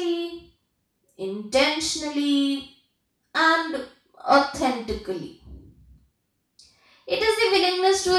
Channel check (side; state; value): both; identical; correlation 1.00